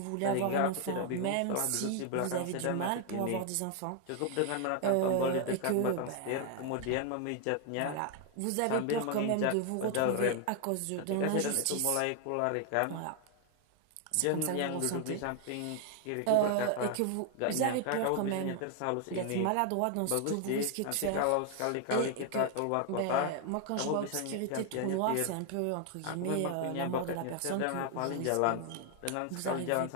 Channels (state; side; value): different; both; correlation 0.00